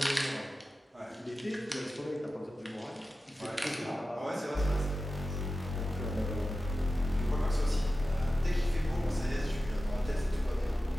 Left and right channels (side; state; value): both; normal; correlation 0.94